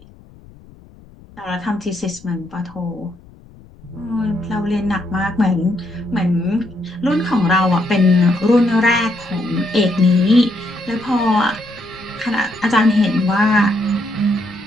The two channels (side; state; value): left; noise; rumble, 24 dB below the sound